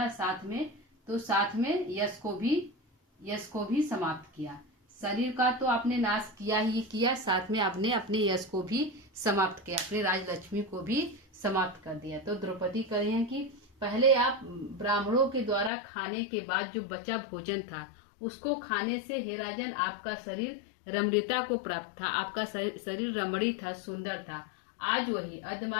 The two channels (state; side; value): drops out; right; at 15.7 s